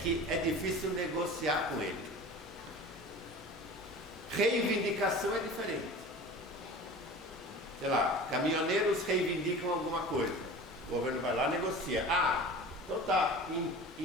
é difícil negociar com ele. Reivindicação é diferente. Sei lá, caminhoneiros reivindicam alguma coisa, o governo vai lá e negocia. Então tá,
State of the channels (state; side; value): normal; both; correlation 0.37